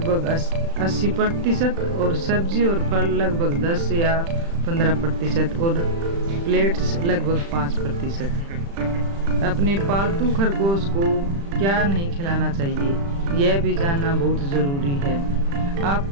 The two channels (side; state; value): left; late; 35 ms